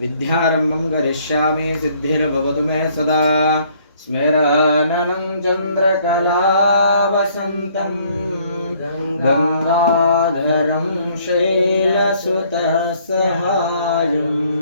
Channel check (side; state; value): both; inverted; correlation -0.62